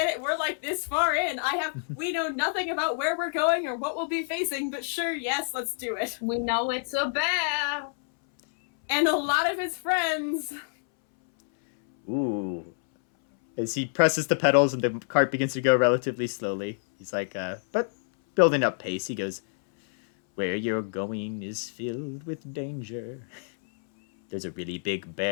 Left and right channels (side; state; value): right; silent; 60 dB below the other